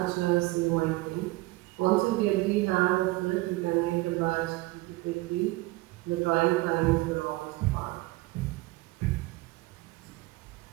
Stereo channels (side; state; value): left; quieter; 20.6 dB